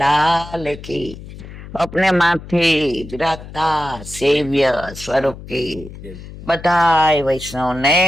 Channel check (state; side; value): noise; left; hum, 14 dB below the sound